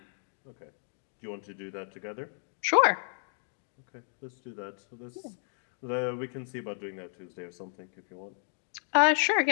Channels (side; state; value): right; silent; 56 dB below the other